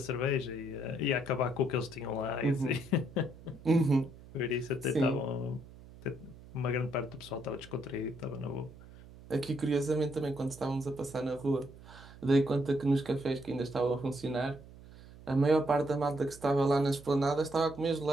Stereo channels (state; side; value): noise; right; hum, 19 dB below the sound